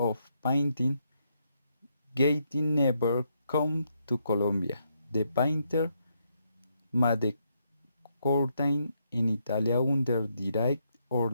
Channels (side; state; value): both; inverted; correlation -0.78